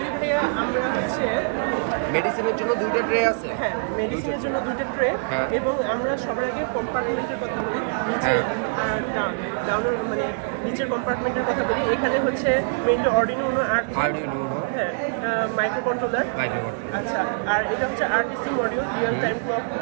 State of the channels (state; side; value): silent; left; digital silence